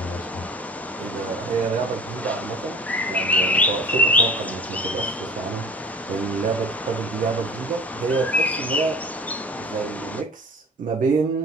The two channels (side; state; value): both; normal; correlation 0.41